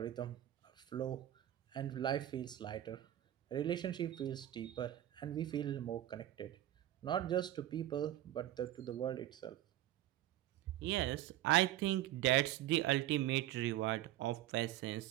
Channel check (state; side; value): quieter; left; 13.4 dB